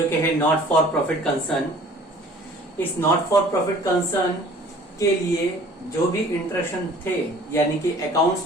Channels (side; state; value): both; normal; correlation 0.50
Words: कि है नॉट फॉर प्रॉफिट कंसर्न। इस नॉट फॉर प्रॉफिट कंसर्न के लिए जो भी इंस्ट्रक्शन थे यानी कि